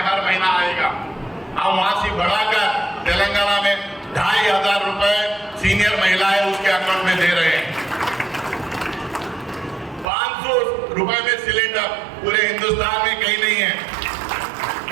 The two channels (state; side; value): drops out; left; at 10.1 s